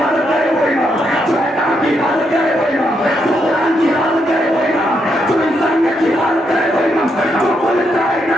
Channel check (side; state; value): both; normal; correlation 0.79